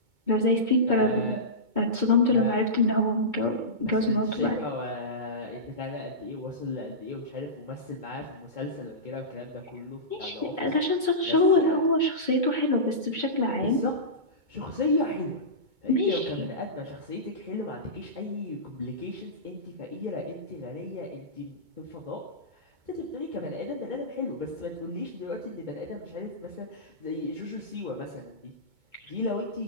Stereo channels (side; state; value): left; late; 2.2 ms